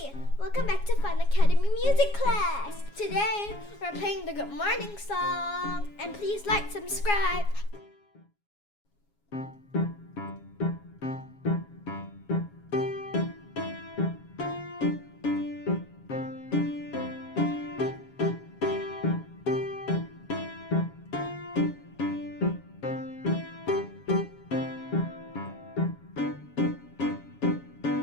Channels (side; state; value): right; late; 7.3 ms